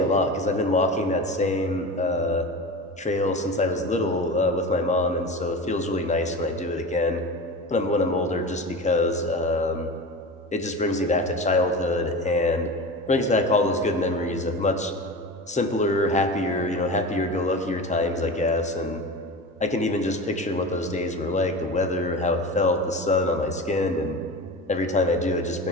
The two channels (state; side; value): normal; both; correlation 0.30